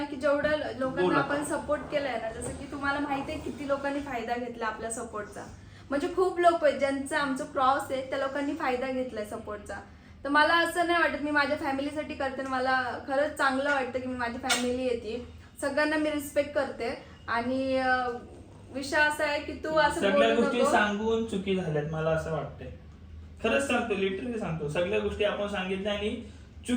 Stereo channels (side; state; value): both; identical; correlation 1.00